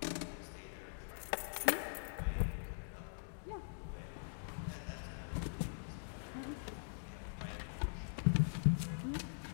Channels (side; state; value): right; silent; digital silence